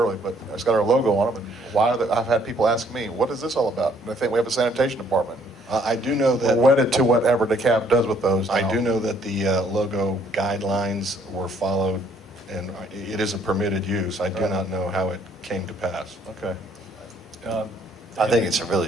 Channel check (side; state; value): both; normal; correlation 0.64